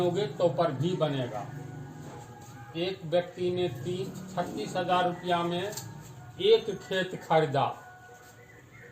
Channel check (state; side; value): identical; both; correlation 1.00